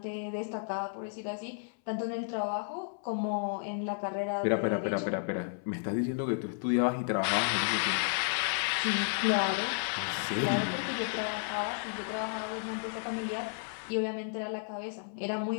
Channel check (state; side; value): silent; right; 56 dB below the other